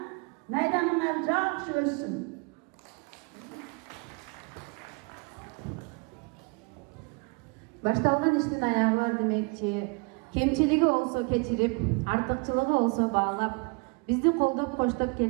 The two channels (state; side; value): quieter; left; 31.4 dB